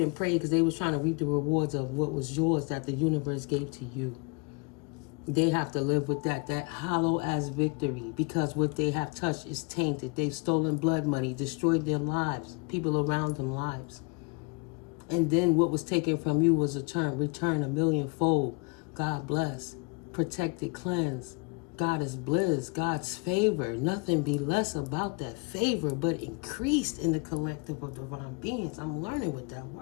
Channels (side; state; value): right; quieter; 30.8 dB